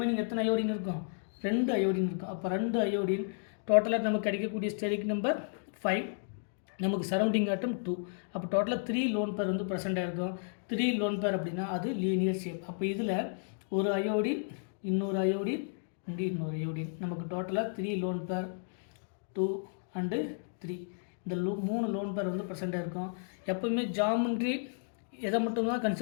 எத்தனை அயோடின் இருக்கும்? 2 அயோடின் இருக்கும். அப்போ 2 அயோடின் டோட்டலாக நமக்கு கிடைக்கக்கூடிய ஸ்டெரிக் நம்பர் 5, நமக்கு சரௌண்டிங் ஆட்டம் 2. அப்போ டோட்டலாக 3 லோன் பேர் வந்து ப்ரெசென்ட்டாக இருக்கும். 3 லோன் பேர் அப்படின்னா அது லீனியர் ஷேப். அப்போ இதில் ஒரு அயோடின், இன்னொரு அயோடின், இங்கே இன்னொரு அயோடின், நமக்கு டோட்டலாக 3 லோன் பேர், 2 அண்டு 3. இந்த 3 லோன் பேர் வந்து ப்ரெசென்ட்டாக இருக்கும். எப்போவுமே ஜாமெண்ட்ரி எதை மட்டும்தான்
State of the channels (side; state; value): right; silent; digital silence